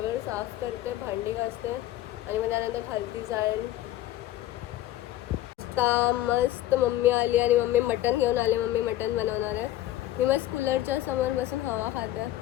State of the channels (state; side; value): quieter; right; 14.1 dB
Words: साफ करते, भांडी घासते आणि मग त्यानंतर खालती जाईन. मस्त मम्मी आली आणि मम्मी मटण घेऊन आले. मम्मी मटण बनवणार आहे. मी मस्त कूलरच्या समोर बसून हवा खाते.